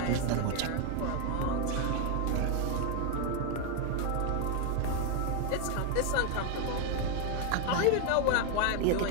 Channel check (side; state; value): both; different; correlation 0.00